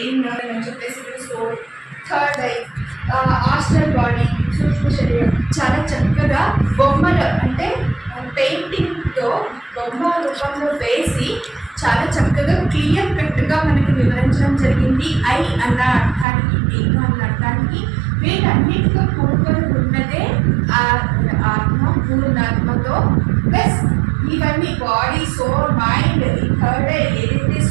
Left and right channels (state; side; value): drops out; left; at 16.2 s